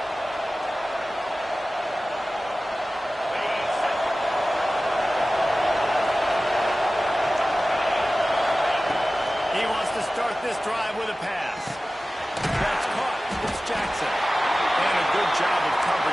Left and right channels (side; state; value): both; normal; correlation 0.96